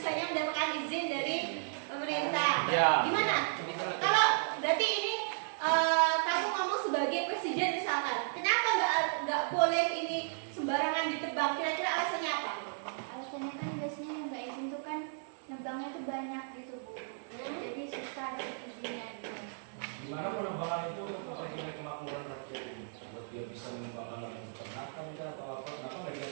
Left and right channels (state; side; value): silent; left; digital silence